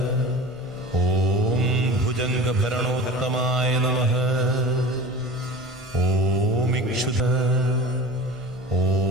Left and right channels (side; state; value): both; normal; correlation 0.36